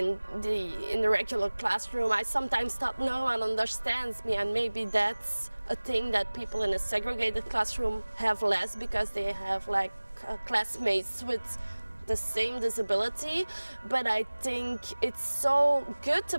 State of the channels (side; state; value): both; inverted; correlation -1.00